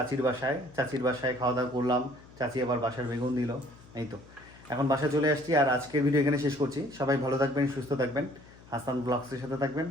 বাসায়। চাচির বাসায় খাওয়া দাওয়া করলাম, চাচি আবার বাসার বেগুন দিল। এই তো এখন বাসায় চলে আসছি। আর আজকের ভিডিও এখানে শেষ করছি। সবাই ভালো থাকবেন, সুস্থ থাকবেন, হাসান ব্লগসের সাথে থাকবেন।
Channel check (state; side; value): noise; left; hum, 23 dB below the sound